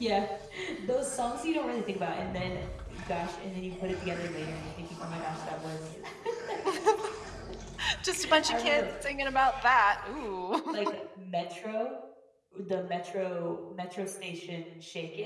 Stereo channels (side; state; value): both; identical; correlation 1.00